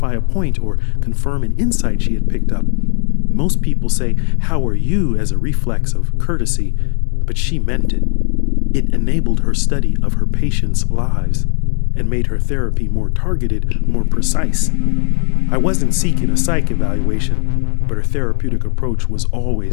a point or confirm an insight she had picked up. Most people say, "How are you?" as a reflex of courtesy, but she meant it. It enabled her study of her patients' lives and made her therapy more targeted, more precise. I wasn't seeking a psych evaluation, but her therapeutic approach was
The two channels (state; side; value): quieter; right; 39.1 dB